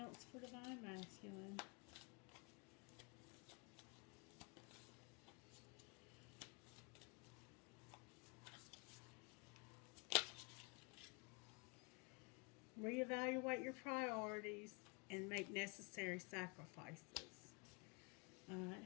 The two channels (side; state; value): right; quieter; 32.0 dB